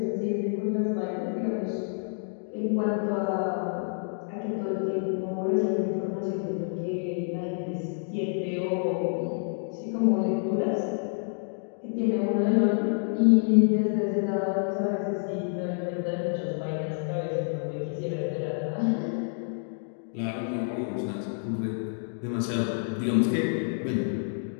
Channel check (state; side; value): silent; right; digital silence